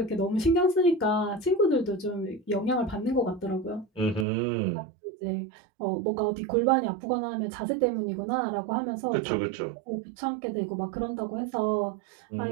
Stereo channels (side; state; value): left; drops out; at 4.2 s